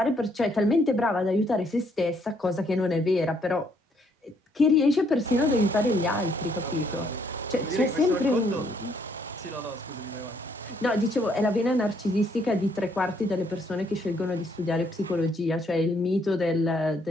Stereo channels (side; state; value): both; normal; correlation 0.69